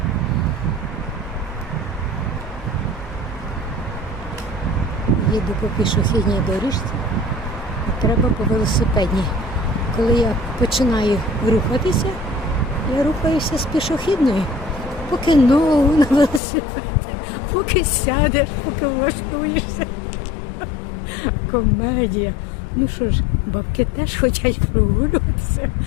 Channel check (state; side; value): drops out; right; at 16.4 s